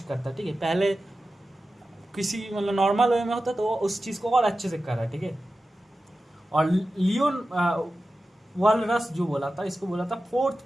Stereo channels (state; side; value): normal; both; correlation 0.93